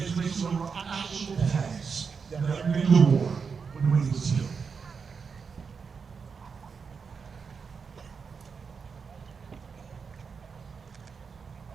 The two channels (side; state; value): left; quieter; 5.6 dB